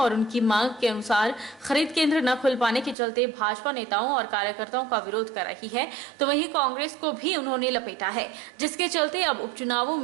उनकी मांग के अनुसार खरीद केंद्र न खुल पाने के चलते भाजपा नेताओं और कार्यकर्ताओं का विरोध कर रही है, तो वहीं कांग्रेस को भी उन्होंने लपेटा है, जिसके चलते अब उपचुनावों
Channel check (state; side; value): drops out; left; at 3.0 s